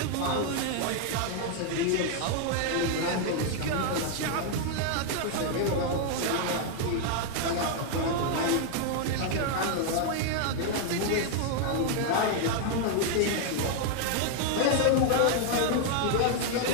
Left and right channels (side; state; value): both; different; correlation 0.00